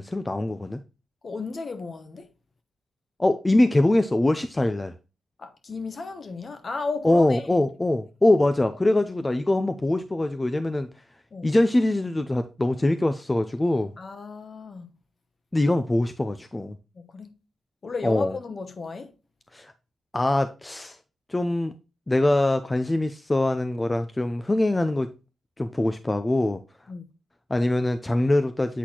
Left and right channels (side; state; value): both; normal; correlation 0.98